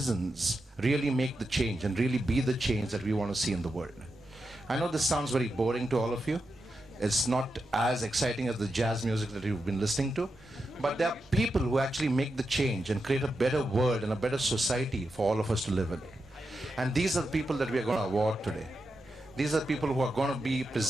really make the change and really be the change that we want to see in the world. I know this sounds very boring to all of you. It's not as exciting as the jazz music that you've been listening to, but there are people who actually make the change and create a better world and a better society for all of us to live in. And these are the people that we are going to award today. These are people who are going to be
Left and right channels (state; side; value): normal; both; correlation 0.88